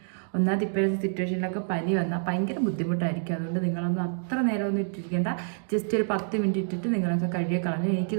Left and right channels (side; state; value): left; silent; digital silence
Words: ഒന്നാമത് ഇപ്പോഴത്തെ സിറ്റുവേഷനിലൊക്കെ പനി വന്നാൽ ഭയങ്കര ബുദ്ധിമുട്ടായിരിക്കും. അതുകൊണ്ട് നിങ്ങളൊന്നും അത്ര നേരമൊന്നും ഇട്ടിരിക്കേണ്ട. ജസ്റ്റ് ഒരു 10 മിനിറ്റ് ഇട്ടിട്ട് നിങ്ങളൊക്കെ കഴുകി കളഞ്ഞു.